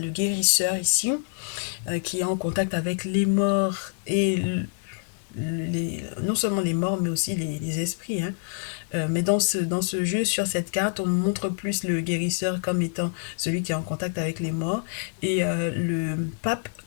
guérisseur ici, qui est en contact avec les morts et non seulement les morts, mais aussi les esprits, hein. Mais dans ce jeu, sur cette carte, on montre plus le guérisseur comme étant celui qui est en contact avec les morts et le pape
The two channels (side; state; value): right; silent; digital silence